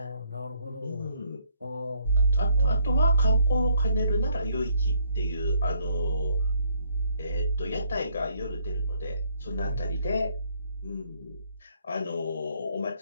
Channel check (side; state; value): both; inverted; correlation -0.67